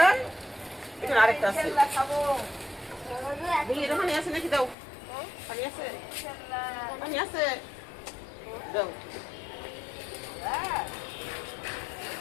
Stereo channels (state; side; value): drops out; right; at 4.8 s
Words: এখানে আরেকটা আছে, দেখি এটা পানি আছে নাকি, দাও। পানি আছে, পানি আছে, দাও।